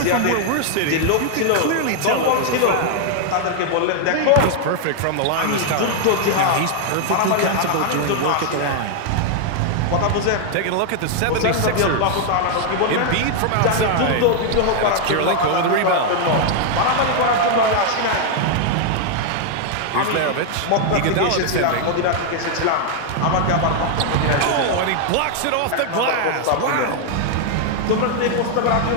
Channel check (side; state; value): both; different; correlation 0.00